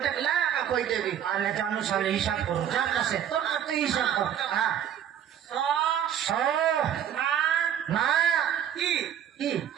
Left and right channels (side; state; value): left; quieter; 9.6 dB